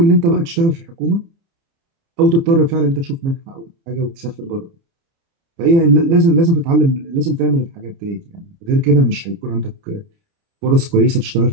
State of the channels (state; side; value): late; left; 30 ms